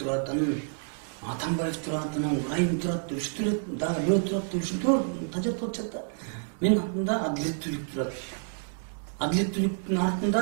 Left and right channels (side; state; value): left; silent; digital silence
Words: анан Атамбаев турат, анан Райым турат, үчтөр дагы бирөө турат, ушинтип тажап атышат да. Менин артымда адилеттүүлүк турат. Адилеттүүлүктүн